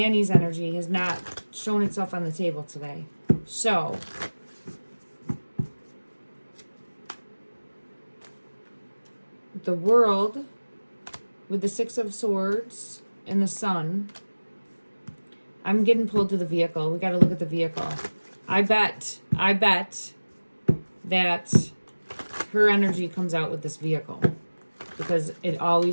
energy, has not shown itself on the table today. So, the world with the Six of Swords and the sun. I'm getting pulled to the vehicle. We got to look at the vehicle. I bet that her energy comes out with this vehicle because it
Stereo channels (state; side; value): inverted; both; correlation -1.00